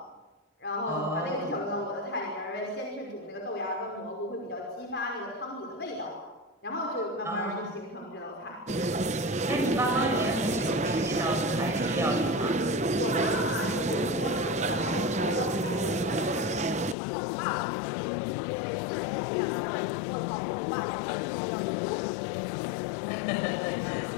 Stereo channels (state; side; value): drops out; right; at 16.9 s